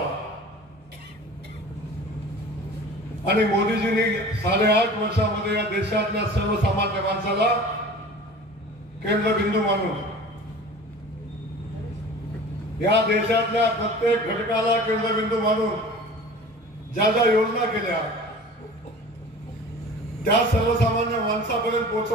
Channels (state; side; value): normal; both; correlation 0.41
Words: आणि मोदीजींनी 8.5 वर्षामध्ये या देशातल्या सर्वसामान्य माणसाला केंद्रबिंदू मानून या देशातल्या प्रत्येक घटकाला केंद्रबिंदू मानून ज्या ज्या योजना केल्या त्या सर्वसामान्य माणसापर्यंत